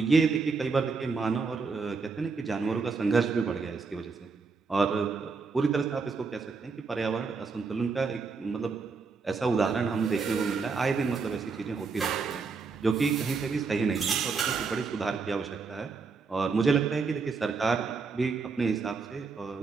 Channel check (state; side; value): quieter; left; 4.7 dB